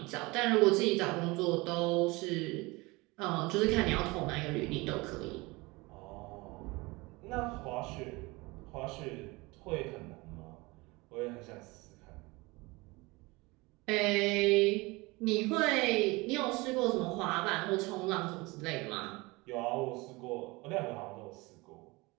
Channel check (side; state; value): left; quieter; 23.8 dB